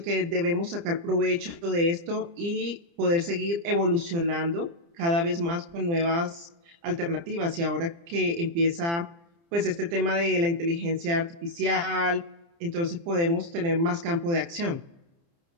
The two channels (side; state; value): left; late; 29 ms